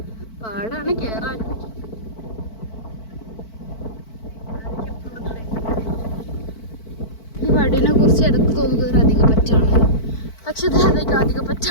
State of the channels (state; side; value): late; right; 4.5 ms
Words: പാടാണ് കയറാൻ. ഈ വടീനെ കുറിച്ച് ഇടക്ക് തോന്നുന്നത് ഒരു അധിക പറ്റാണ്. പക്ഷെ ഇത് അധിക